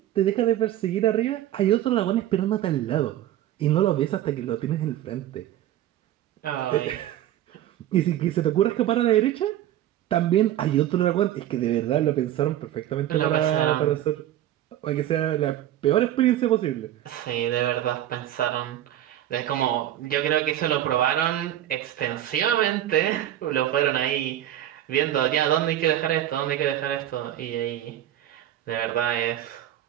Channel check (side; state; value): left; quieter; 12.5 dB